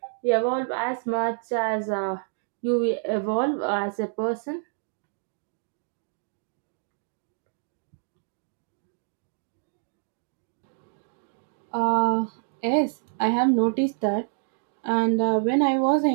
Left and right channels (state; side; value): silent; left; digital silence